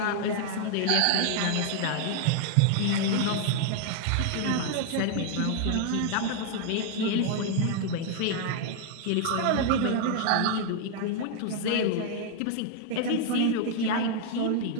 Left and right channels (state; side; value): different; both; correlation 0.00